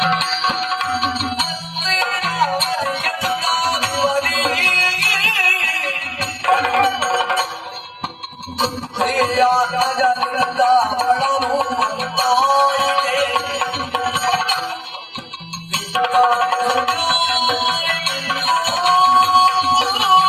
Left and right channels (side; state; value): both; identical; correlation 1.00